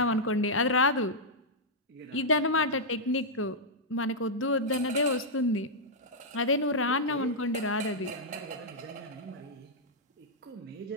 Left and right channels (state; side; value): normal; both; correlation -0.08